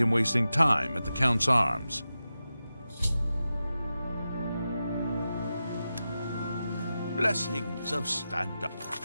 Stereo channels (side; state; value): both; inverted; correlation -0.92